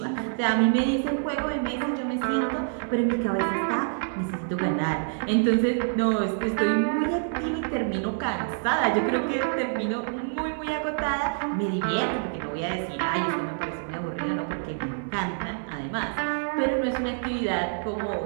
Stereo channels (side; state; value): left; silent; digital silence